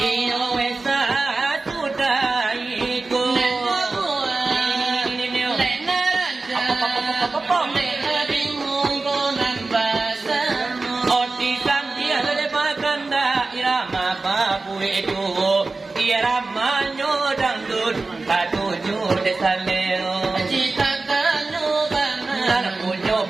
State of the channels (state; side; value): quieter; left; 3.6 dB